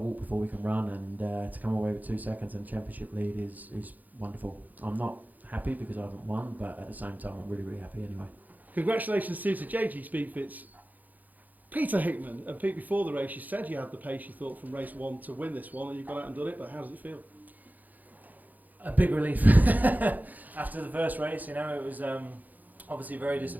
before we can run, and to come away with 2 seconds and championship lead is wonderful. I'm not happy because I haven't won, but at the same time, I'm really happy anyway. Congratulations to JG Speedfit's Peter Hickman. And Pete, before the race, you said you had the pace you thought from race 1 to win this one, and you've gone out and done it, but how does it feel? A big relief. After the first race, it was obviously very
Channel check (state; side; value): late; left; 0.082 ms